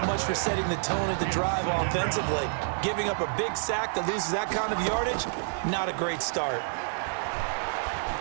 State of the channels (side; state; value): left; silent; digital silence